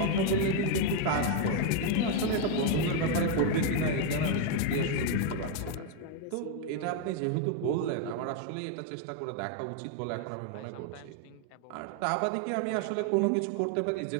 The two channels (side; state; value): both; different; correlation 0.01